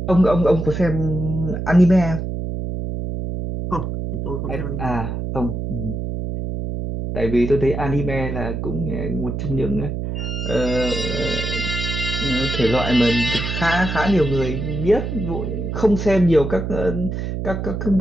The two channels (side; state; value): right; noise; hum, 4 dB below the sound